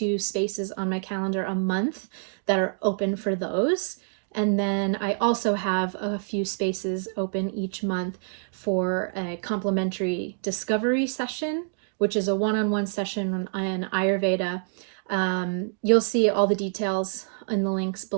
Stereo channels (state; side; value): silent; left; digital silence